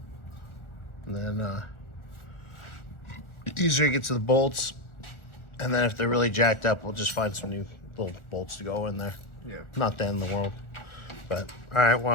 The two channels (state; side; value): late; right; 1.4 ms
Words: And then easier to get to the bolts. And then if they're really jacked up, we'll just find some new little bolts to go in there. Yeah. Not the end of the world. But, all right, well,